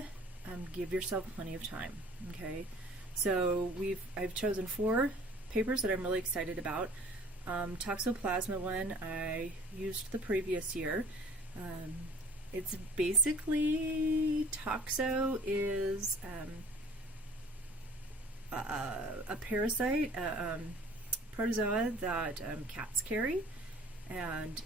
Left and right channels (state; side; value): normal; both; correlation 0.49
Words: give yourself plenty of time. Okay, so I've chosen 4 papers that I'm really excited about. Toxoplasma one I used the previous year. It's basically, toxo is a parasite, protozoa that cats carry and